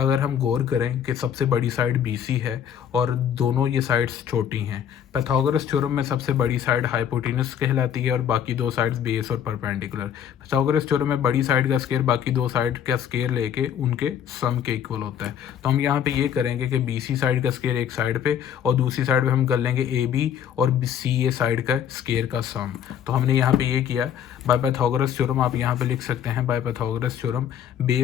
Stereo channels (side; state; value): right; quieter; 9.0 dB